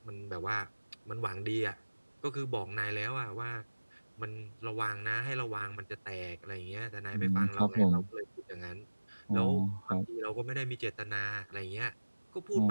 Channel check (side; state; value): both; inverted; correlation -1.00